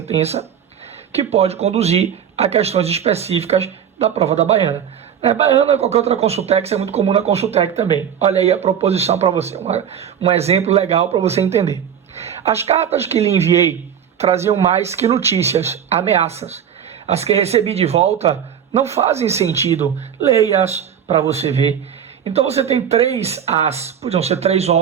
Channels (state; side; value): quieter; left; 8.6 dB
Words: que pode conduzir a questões específicas da prova da Baiana. Baiana ou qualquer outra Consultec, isso é muito comum na Consultec também. Olha aí a proposição para você, um exemplo legal para você entender. As cartas que lhe enviei traziam mais que notícias, ameaças. As que recebi de volta não fazem sentido. Leia-as para você ver. Então você tem três as, podiam ser três